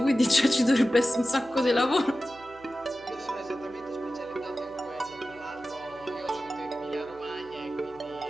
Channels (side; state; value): right; noise; hum, 25 dB below the sound